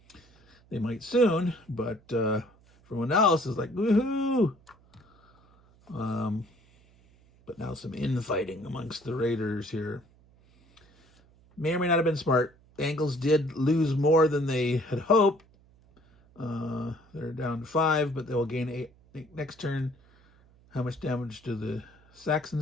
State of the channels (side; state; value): right; noise; hum, 29 dB below the sound